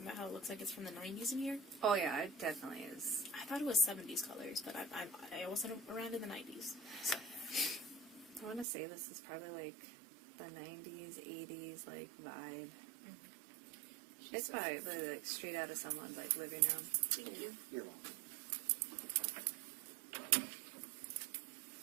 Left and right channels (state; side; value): drops out; left; at 8.7 s